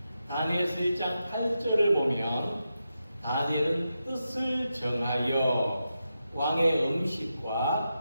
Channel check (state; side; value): inverted; both; correlation -0.88